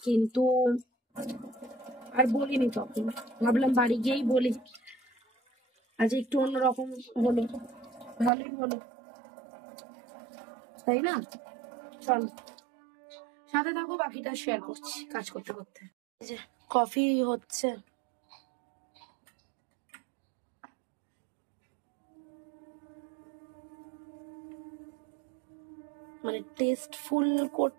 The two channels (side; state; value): left; drops out; at 8.3 s